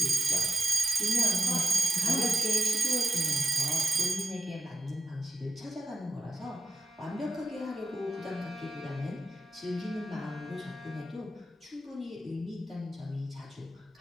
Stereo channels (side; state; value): both; normal; correlation 0.93